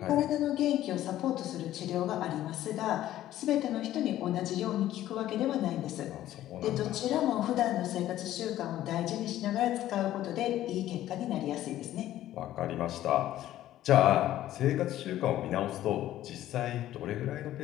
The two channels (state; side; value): quieter; right; 13.4 dB